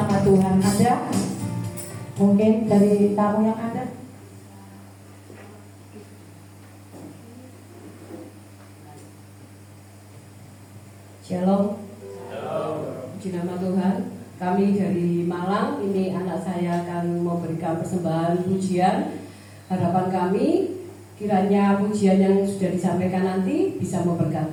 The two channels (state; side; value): identical; both; correlation 1.00